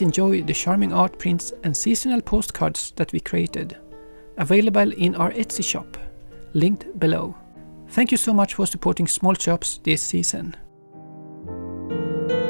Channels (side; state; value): both; inverted; correlation -1.00